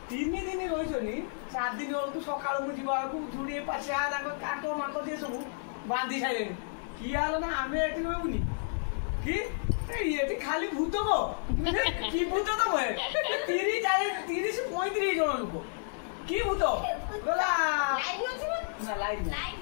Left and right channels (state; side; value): silent; right; digital silence